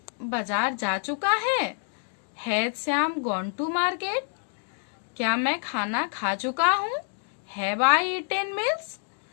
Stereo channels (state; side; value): silent; right; 60 dB below the other